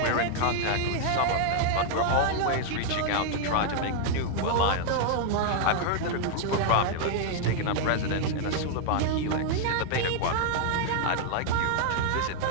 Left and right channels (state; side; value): different; both; correlation -0.01